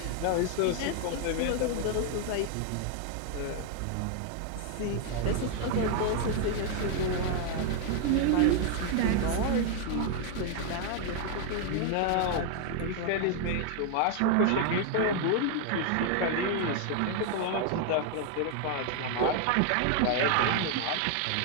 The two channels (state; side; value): different; both; correlation 0.00